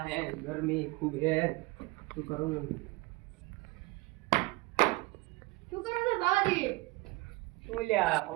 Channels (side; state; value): left; quieter; 22.8 dB